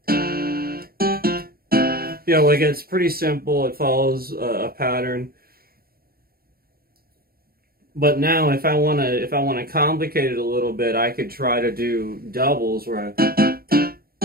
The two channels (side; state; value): left; late; 0.44 ms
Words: Yeah, like it's pretty simple. It follows a pattern. But now, if I wanna complicate it a little bit, I could try to do doubles where